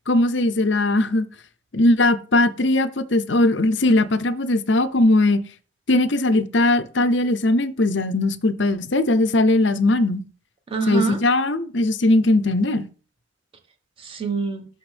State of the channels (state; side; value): normal; both; correlation 0.54